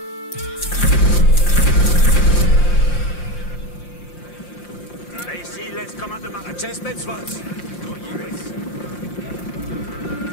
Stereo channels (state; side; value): late; right; 5.7 ms